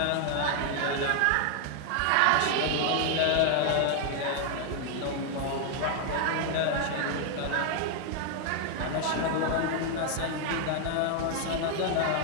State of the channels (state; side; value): different; both; correlation 0.00